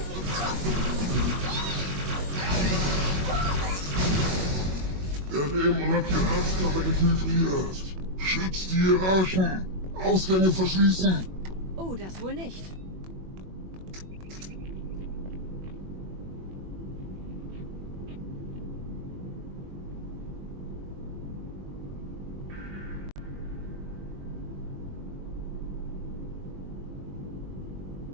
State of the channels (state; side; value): late; left; 21 ms